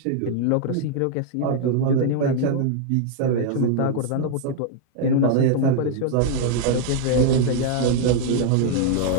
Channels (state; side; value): different; both; correlation 0.00